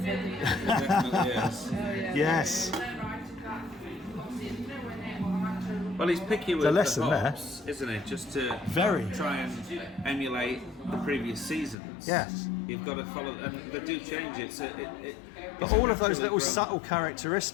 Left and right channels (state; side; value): drops out; right; at 11.8 s